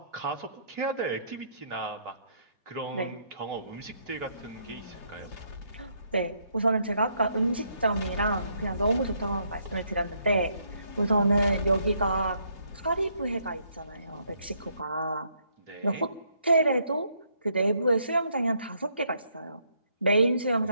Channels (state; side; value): inverted; both; correlation -0.72